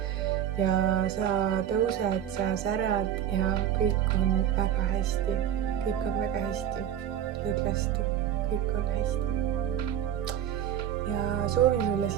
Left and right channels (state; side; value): quieter; left; 10.3 dB